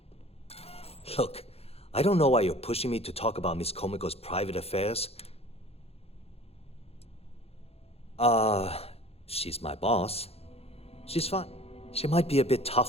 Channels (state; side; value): late; right; 0.29 ms